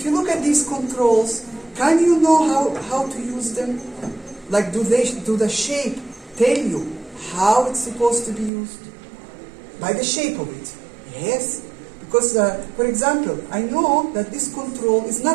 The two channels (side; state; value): left; drops out; at 8.5 s